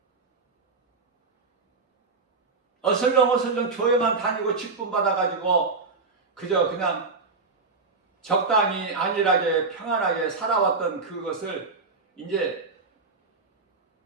어슬렁 교회만 다니고 직분 받아가지고 그저 그냥 적당히 안일하게 평안하게 살아왔던 그것을 이제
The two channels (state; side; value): quieter; left; 4.1 dB